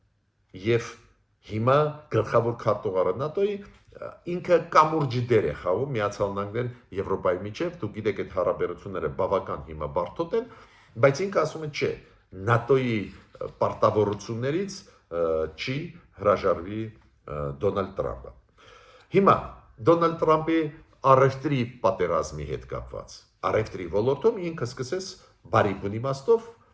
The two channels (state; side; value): identical; both; correlation 1.00